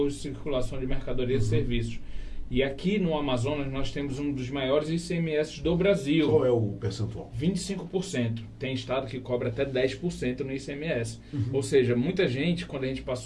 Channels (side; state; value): both; identical; correlation 1.00